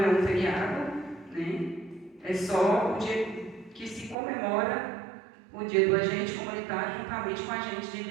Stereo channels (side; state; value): left; drops out; at 4.2 s